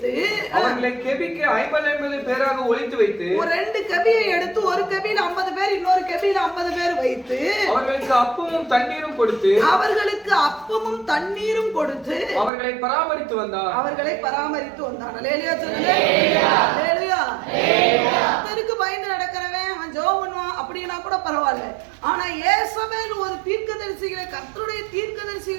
அவர்களை கெபிக்கு 50 பேராக ஒளித்து வைத்து, ஒரு 2 கெபியை எடுத்து ஒரு கெபியில 50 பேர் இன்னொரு கெபியில 50 பேர் வைத்து அவர்களுக்கு அப்பமும் தண்ணீரும் கொடுத்து அவர்களை பராமரித்து வந்தான். அல்லேலூயா சொல்லுங்க. அல்லேலூயா. கர்த்தருக்கு பயந்து நடக்கிறவன் அவன் ஜெபம் பண்ணுவான் அப்படினா கூட பரவாயில்லை. ஆனா யேசபேல் ஒரு தீர்க்கதரிசிகளை கர்த்தருடைய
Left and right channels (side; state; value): left; drops out; at 12.5 s